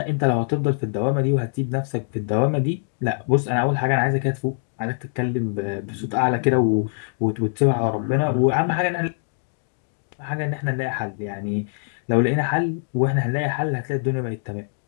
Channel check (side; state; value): right; silent; digital silence